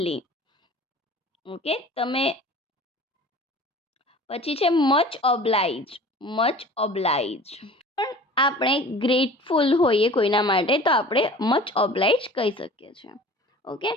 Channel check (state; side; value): normal; both; correlation 0.43